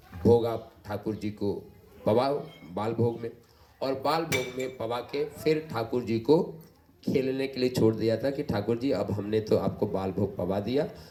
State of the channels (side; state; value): both; identical; correlation 1.00